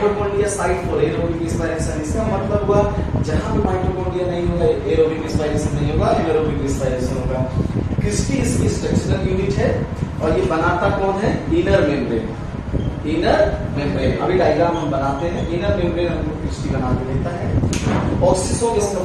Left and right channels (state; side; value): identical; both; correlation 1.00